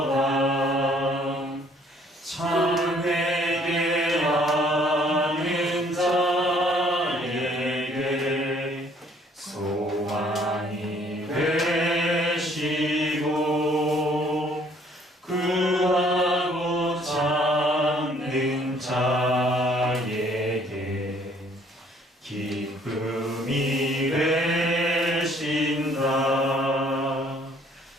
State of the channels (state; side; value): normal; both; correlation 0.61